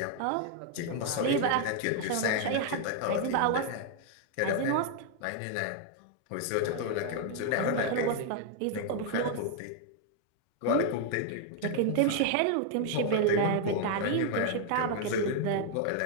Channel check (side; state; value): both; different; correlation 0.00